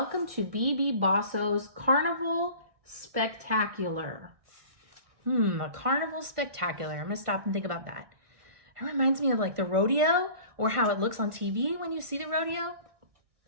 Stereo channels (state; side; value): late; left; 1.4 ms